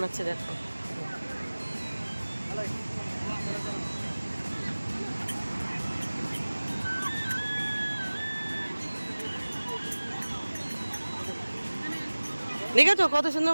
দেখো। দেখেছো কত সুন্দর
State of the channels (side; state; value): both; inverted; correlation -1.00